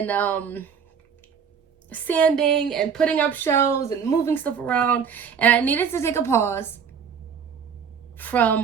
sanding and putting up shows and moving stuff around, and I needed to take a pause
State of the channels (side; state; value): left; quieter; 6.9 dB